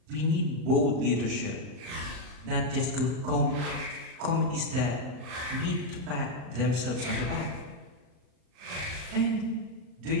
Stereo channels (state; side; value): late; left; 39 ms